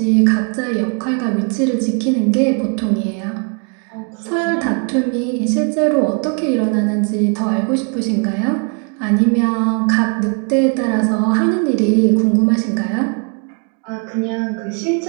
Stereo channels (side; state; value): left; quieter; 38.9 dB